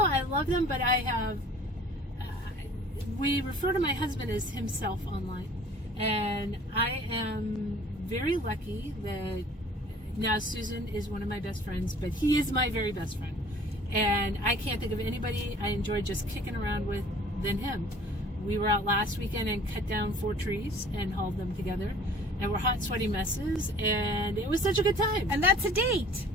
I love them, but I have, we refer to my husband as himself online. And I am very lucky that now Susan is one of my best friends, but he is my very best friend. And I can't think of anybody I enjoy just kicking around with than him. We were out last weekend and cut down 4 trees and hauled them together. And we're hot, sweaty messes, and it was such a good time. And that's a date.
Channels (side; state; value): both; normal; correlation 0.50